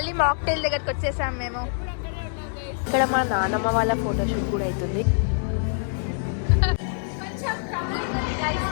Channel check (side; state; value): right; silent; digital silence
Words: మాక్టైల్ దగ్గరకు వచ్చేసాం మేము. ఇక్కడ మా నానమ్మ వాళ్ళ ఫోటోషూట్ కూడా అవుతుంది.